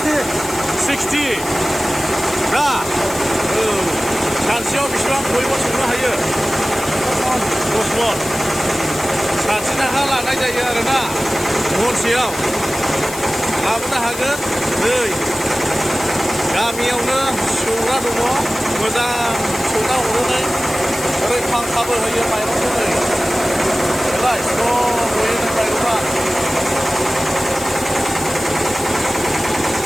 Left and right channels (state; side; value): noise; left; hiss, 11 dB below the sound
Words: 60 दा सानसेयाव बेसेबां बयबो संनो हायो? 10 मन। साथि थाखा लानाय जायो आरोना महनसेयाव। लाबोनो हागोन। नै गामियावनो सौग्रा दङ, मोजां सौना हरनानै ओरै फांखाबो होयो माइरंखौ। नै बेलाय स्र' गयोनो माइरङा।